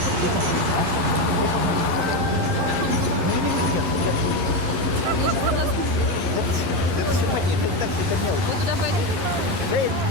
телефон? Это все понятно, это так все мелочь. Вы туда пойдете? Да я не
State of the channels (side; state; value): left; late; 12 ms